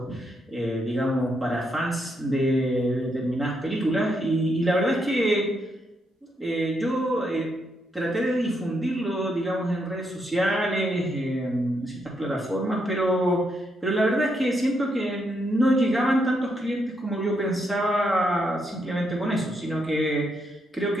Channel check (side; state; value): both; normal; correlation 0.79